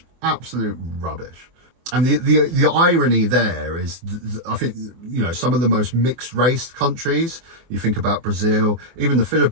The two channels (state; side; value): late; left; 24 ms